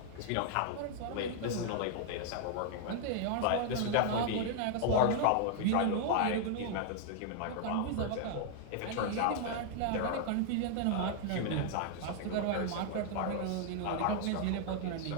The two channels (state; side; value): different; both; correlation 0.00